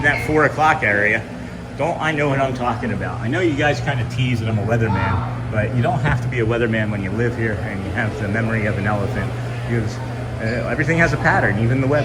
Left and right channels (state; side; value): identical; both; correlation 1.00